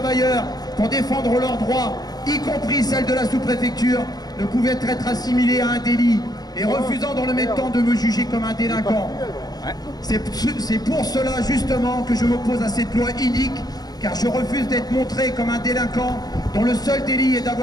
pour défendre leurs droits, y compris celles de la sous-préfecture, ne pouvaient être assimilées à un délit et refusant dans le même temps de me juger comme un délinquant. C'est pour cela justement que je m'oppose à cette loi inique, car je refuse d'être montré comme un délinquant dont le seul délit est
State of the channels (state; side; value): late; right; 0.19 ms